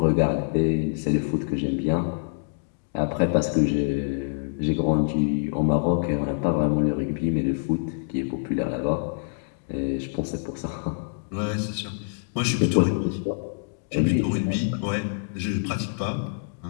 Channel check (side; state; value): right; silent; digital silence